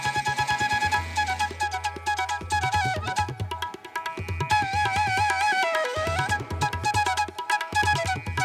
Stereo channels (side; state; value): both; identical; correlation 1.00